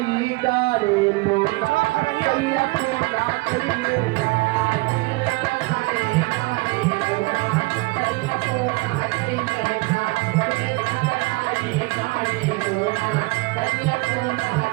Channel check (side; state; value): left; quieter; 24.5 dB